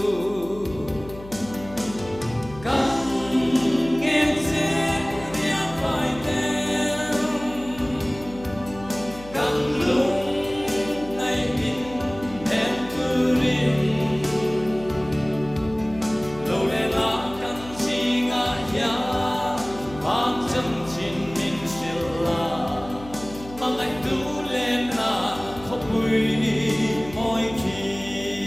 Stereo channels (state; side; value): noise; left; hum, 17 dB below the sound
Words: căn nghe dễ riêng vài tên căn lúc ngày mình em cứ riêng lâu lẽ là căn gì ngã ya mang chân trình mình siêu là mang anh tu lên là không quỳ mỗi khi